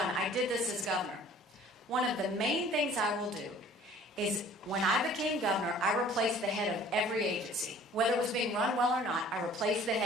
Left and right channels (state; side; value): normal; both; correlation 0.51